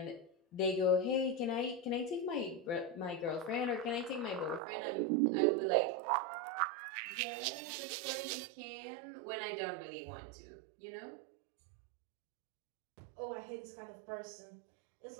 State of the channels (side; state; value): left; drops out; at 4.6 s